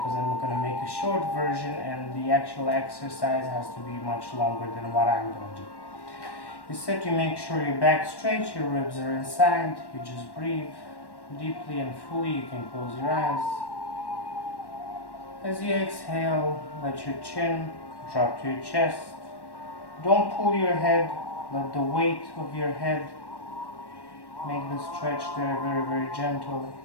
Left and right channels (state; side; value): late; right; 1.1 ms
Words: I'm going to make a short version and the actual exercise has to be much longer than what I'm going to do. You sit, you make sure your back straight, your ribs are inside, you just breathe deeply and fully. You can close your eyes. As you exhale, let your chin drop to your chest. Don't pull your head, let the weight of your head make the stretch there very gentle.